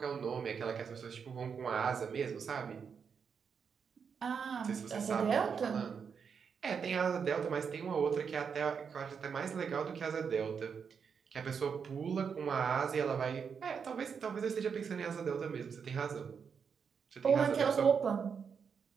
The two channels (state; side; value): quieter; left; 6.4 dB